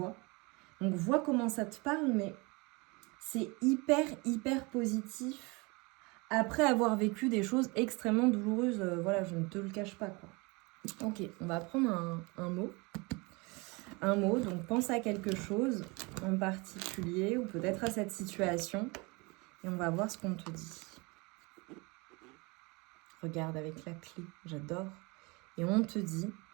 Donc vois comment ça te parle, mais c'est hyper, hyper positif après avoir vécu des choses extrêmement douloureuses, voilà, je ne te le cache pas, quoi. OK, on va prendre un mot. Un mot, donc pense à quelque chose en particulier ou peut-être à cette situation et on va voir ce qu'on te dit. Regarde avec la clé, j'adore. Et on te dit,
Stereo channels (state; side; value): quieter; left; 26.9 dB